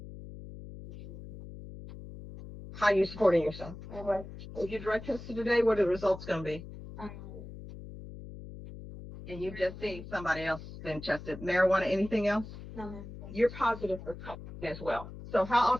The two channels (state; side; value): noise; left; hum, 13 dB below the sound